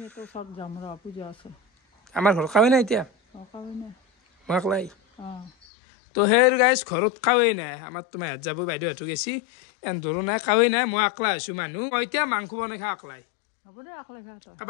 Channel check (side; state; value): right; drops out; at 5.5 s